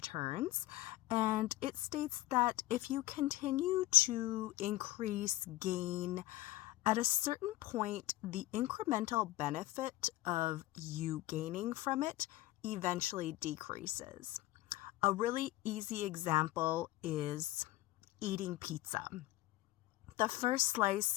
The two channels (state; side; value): quieter; right; 17.2 dB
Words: and it states that if you continue to increase gain, at a certain point, the incremental benefit of you gaining from it eventually decreases. A really easy example is eating pizza. The first